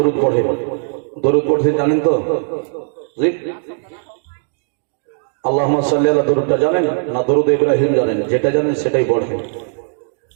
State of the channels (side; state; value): left; silent; 66 dB below the other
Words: পড়ে। দরুদ পড়তে জানেন তো? আল্লাহুম্মা সাল্লি আলা দরুদটা জানেন না দরুদ ইব্রাহিম জানেন? যেটা জানেন সেটাই পড়েন।